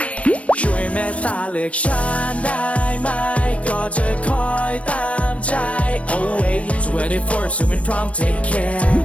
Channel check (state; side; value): late; right; 0.063 ms